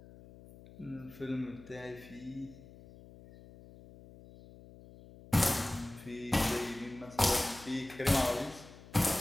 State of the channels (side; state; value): left; noise; hum, 19 dB below the sound